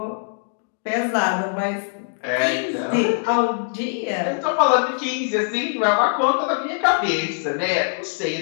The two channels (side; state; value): right; silent; digital silence